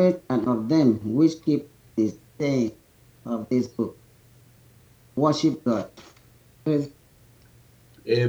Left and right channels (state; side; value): identical; both; correlation 1.00